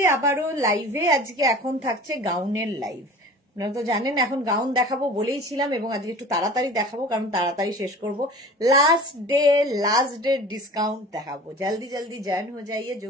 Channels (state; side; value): normal; both; correlation 0.40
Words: আবারও লাইভে। আজকে এখন থাকছে গাউনের লাইভ। আপনারা তো জানেন এখন গাউন দেখাবো বলেইছিলাম, এবং আজকে একটু তাড়াতাড়ি দেখাবো কারণ তাড়াতাড়ি শেষ করব। लास्ट डे डिस्काउंट देखाबो। जल्दी जल्दी ज्वाइन हो जाइए। जो